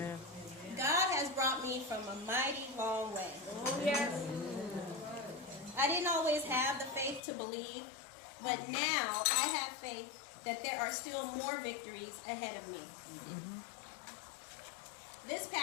God has brought me from a mighty long way. Oh, yes. I didn't always have the faith to believe, but now I have faith that there are still more victories ahead of me. Mm-hmm. This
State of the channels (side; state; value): right; drops out; at 7.2 s